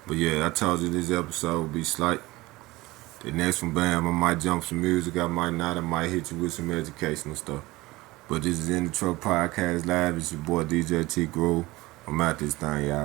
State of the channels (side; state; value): left; quieter; 20.1 dB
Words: But yeah, I told you this episode would be slight. The next one, bam, I might jump some music, I might not, I might hit you with some educational stuff. But this is In the Truk Podcast Live. It's your boy DJ T Groove. I'm out this thing,